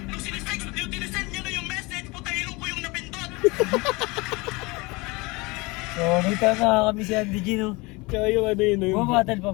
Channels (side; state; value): right; quieter; 24.9 dB